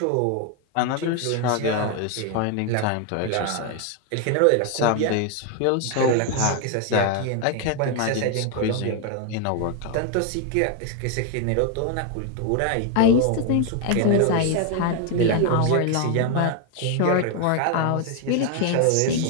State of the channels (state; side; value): different; both; correlation 0.01